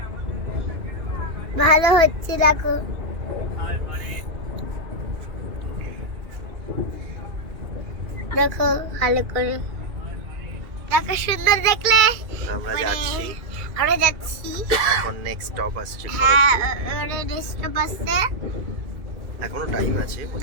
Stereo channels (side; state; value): left; late; 2.4 ms